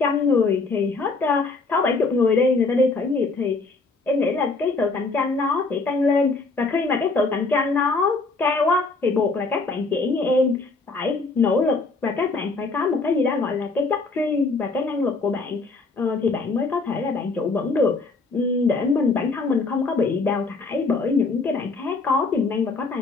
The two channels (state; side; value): quieter; right; 3.7 dB